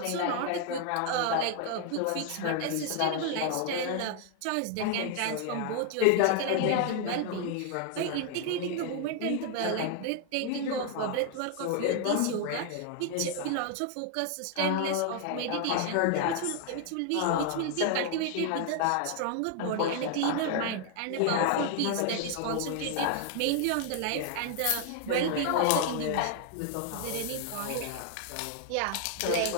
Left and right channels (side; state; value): both; different; correlation 0.00